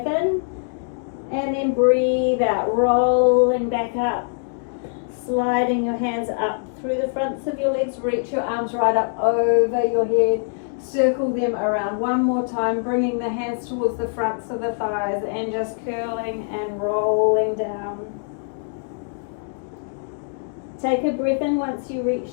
in, and then breathe out, rolling back up, sliding your hands up through the fronts of your legs. Reach your arms right up over your head. Circle them around one more time, bringing the hands towards the fronts of the thighs and just curling and rolling down. Take a breath in once you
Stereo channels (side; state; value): right; silent; digital silence